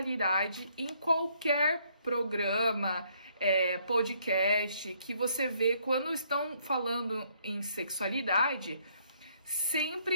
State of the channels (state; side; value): inverted; both; correlation -0.68